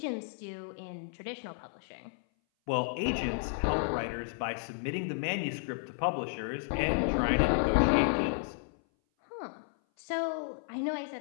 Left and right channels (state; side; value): silent; right; 56 dB below the other